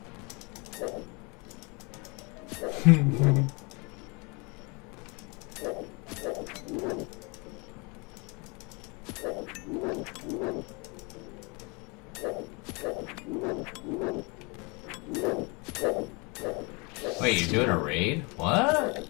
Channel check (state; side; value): quieter; right; 29.6 dB